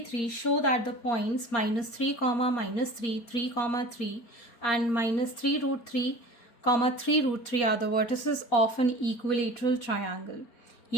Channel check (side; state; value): right; late; 4.2 ms